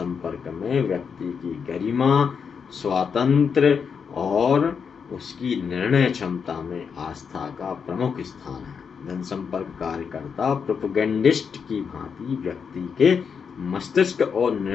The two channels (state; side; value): quieter; right; 6.3 dB